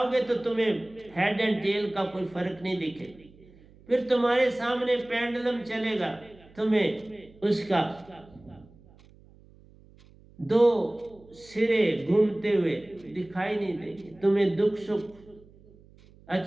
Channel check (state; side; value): noise; right; hum, 25 dB below the sound